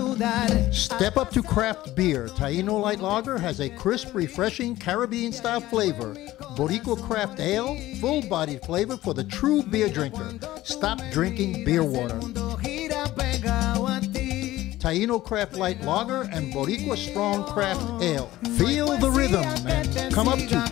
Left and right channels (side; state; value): right; quieter; 16.0 dB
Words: Step up to craft beer. Taino Light Lager has a crisp, refreshing Caribbean-style flavor. Boricua Craft Ale, full-bodied flavor for the true beer drinker. Stop drinking beer water. Taino Craft Light Lager and Boricua Strong Craft Ale. Feel the rhythm and come up to